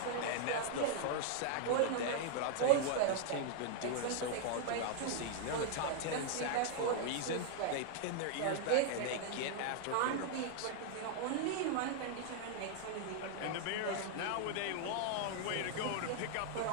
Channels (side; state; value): both; different; correlation 0.00